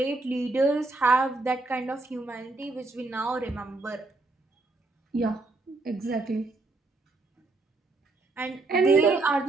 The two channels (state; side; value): quieter; left; 3.2 dB